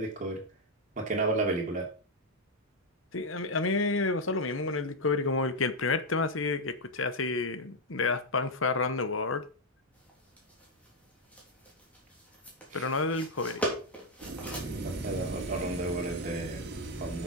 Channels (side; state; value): both; normal; correlation 0.02